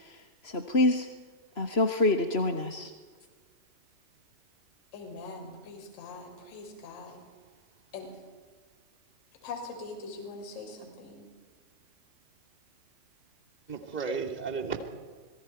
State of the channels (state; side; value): late; right; 3.0 ms